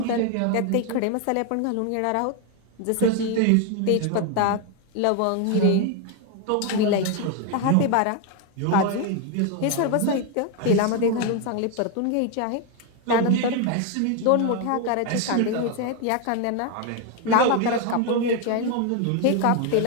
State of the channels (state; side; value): different; both; correlation 0.01